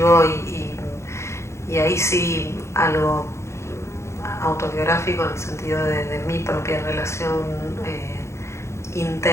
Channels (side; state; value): right; late; 0.13 ms